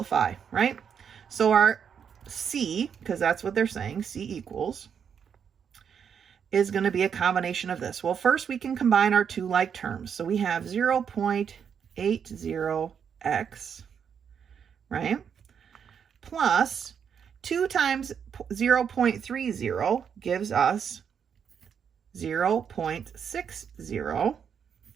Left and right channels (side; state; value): left; quieter; 7.5 dB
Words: right? So our C, because that's what they're saying, C equals, is going to be a combination of this. Well, first we can combine our two like terms. So we have 0.80x, right? Plus 2 times 0.30 gives us 0.60